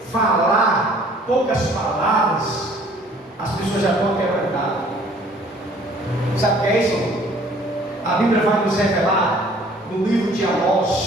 falar poucas palavras, as pessoas já estão quebrantadas. Sabe o que é isso? A Bíblia vai nos revelar no livro de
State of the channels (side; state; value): both; normal; correlation 0.55